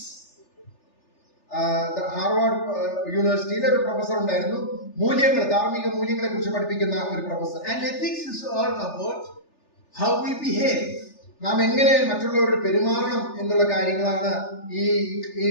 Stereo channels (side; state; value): right; late; 3.4 ms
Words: Harvard യൂണിവേഴ്സിറ്റിയിലെ ഒരു പ്രൊഫസർ ഉണ്ടായിരുന്നു, മൂല്യങ്ങൾ, ധാർമ്മിക മൂല്യങ്ങളെ കുറിച്ച് പഠിപ്പിക്കുന്ന ഒരു professor. And ethics is all about how we behave. നാം എങ്ങനെ മറ്റുള്ളവരോട് പെരുമാറണം എന്നുള്ള കാര്യങ്ങളാണ് ഈ